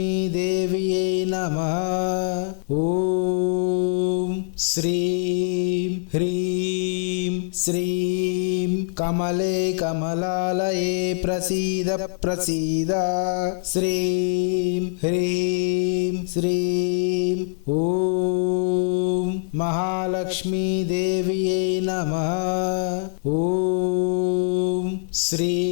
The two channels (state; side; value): silent; right; 63 dB below the other